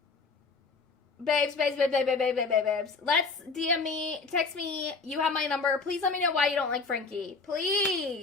Babes. Let's DM me, text me. You have my number. Please let me know why you don't like Frankie.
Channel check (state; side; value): quieter; right; 4.3 dB